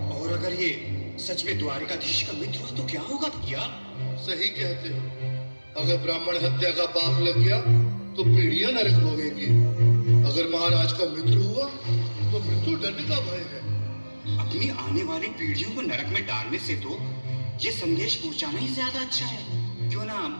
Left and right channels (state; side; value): inverted; both; correlation -1.00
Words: और अगर ये सच में द्वारकाधीश का मित्र हुआ तो क्या होगा भैया? सही कहते हो, अगर ब्राह्मण हत्या का पाप लग गया तो पीढ़ियां नरक भोगेंगी। अगर महाराज का मित्र हुआ तो मृत्यु दंड का भय है। अपनी आने वाली पीढ़ियों को नरक में डालने से तो ये संदेश पहुंचाना ही ज्यादा अच्छा है। क्यों ना